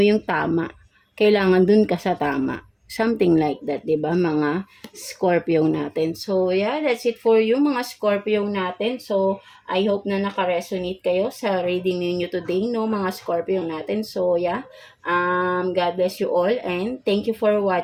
tama. Kailangan dun ka sa tama. Something like that, diba, mga Scorpio natin. So, that's it for you, mga Scorpio natin. So, I hope na naka-resonate kayo sa reading ninyo today, no, mga Scorpio natin. So, God bless you all and thank you for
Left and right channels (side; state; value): both; identical; correlation 1.00